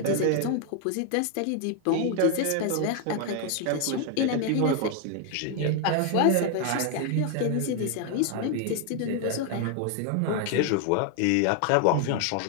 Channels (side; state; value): both; different; correlation 0.00